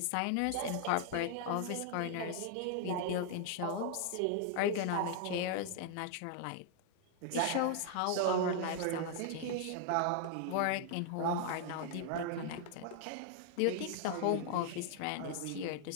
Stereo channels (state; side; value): different; both; correlation 0.00